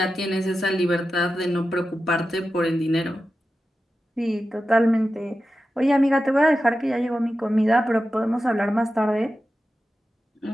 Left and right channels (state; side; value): normal; both; correlation 0.92